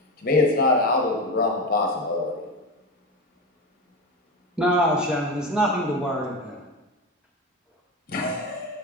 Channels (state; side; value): normal; both; correlation 0.20